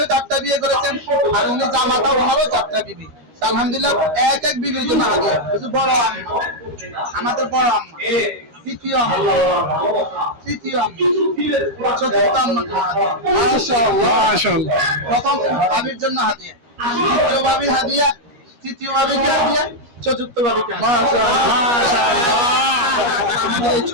যাত্রা বিয়ে করেছেন, আর উনি জামাতা ওনারও যাত্রা বিবি। আলহামদুলিল্লাহ, এক এক বিবির জন্য হাদিয়া। বড় আম্মা, আমাদের বড় আম্মা, তৃতীয় আম্মা, তৃতীয় আম্মা, চতুর্থ আম্মা, মাশাআল্লাহ মাশাআল্লাহ। প্রথম ভাবির জন্য হাদিয়া, দ্বিতীয় ভাবির হাদিয়া, তৃতীয় ভাবিকে হাদিয়া, চতুর্থ ভাবিকে মাশাআল্লাহ মাশাআল্লাহ। আমাদের এই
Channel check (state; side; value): late; left; 13 ms